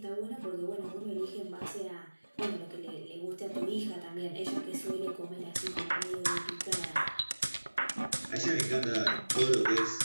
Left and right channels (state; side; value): inverted; both; correlation -1.00